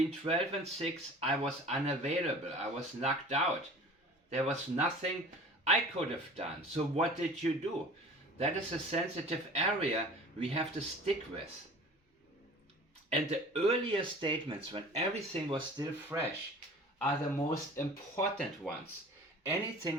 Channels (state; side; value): normal; both; correlation 0.43